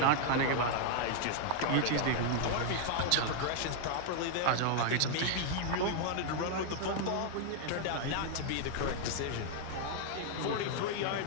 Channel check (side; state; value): both; different; correlation 0.00